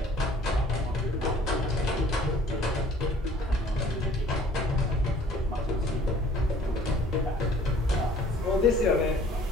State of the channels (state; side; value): normal; both; correlation 0.54